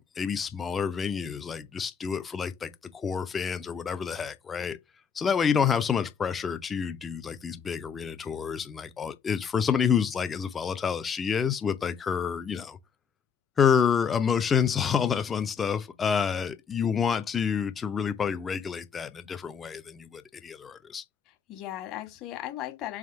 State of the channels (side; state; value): right; quieter; 6.8 dB